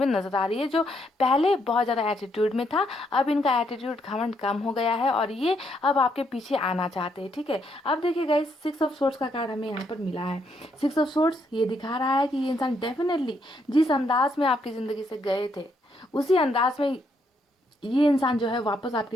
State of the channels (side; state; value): both; normal; correlation 0.74